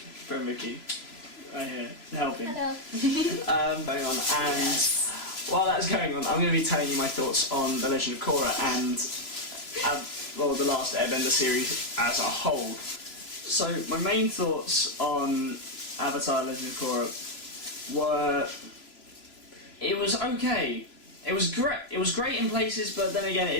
Vicky right here helping. Hello. Going on, and while that's going on, I'm going to be telling you my thoughts on The Legend of Korra and the Last Airbender series as a whole. So my main thoughts on Avatar: Legend of Korra were, it was okay. It was great. It was great in places, but then again,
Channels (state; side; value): late; right; 3.0 ms